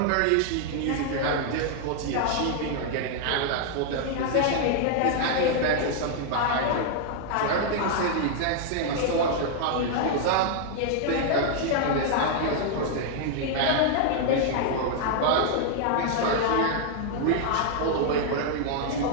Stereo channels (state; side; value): different; both; correlation -0.01